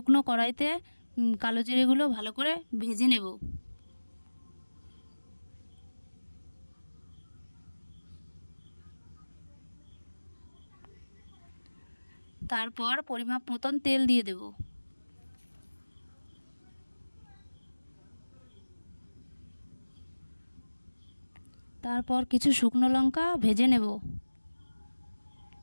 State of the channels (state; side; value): inverted; both; correlation -1.00